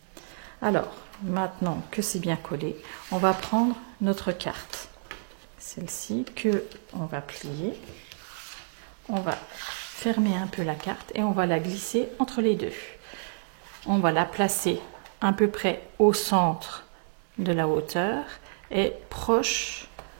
Alors, maintenant que c'est bien collé, on va prendre notre carte. Celle-ci que on va plier. On va fermer un peu la carte et on va la glisser entre les deux. On va la placer à peu près au centre de la hauteur et proche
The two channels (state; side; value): silent; left; digital silence